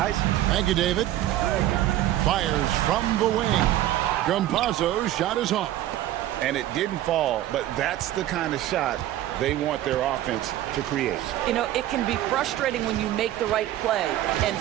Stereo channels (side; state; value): left; quieter; 13.6 dB